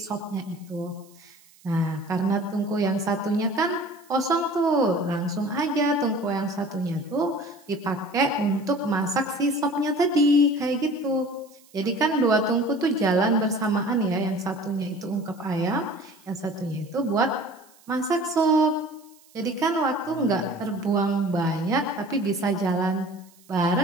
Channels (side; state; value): right; noise; hiss, 28 dB below the sound